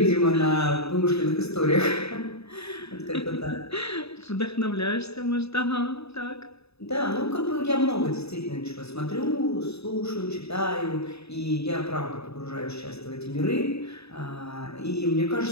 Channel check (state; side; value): late; right; 0.79 ms